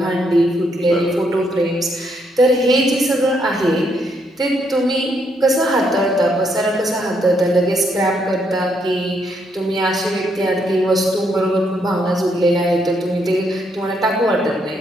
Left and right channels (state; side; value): normal; both; correlation 0.75